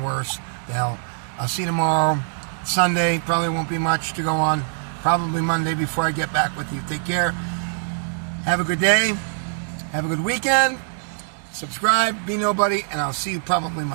worse. The hell. I'll see you tomorrow. Sunday. Probably won't be much to go on. Probably Monday before I get back with you. Take care. Have a good day. Have a good weekend. Subscribe. Be nobody. And I'll see you probably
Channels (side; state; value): left; silent; digital silence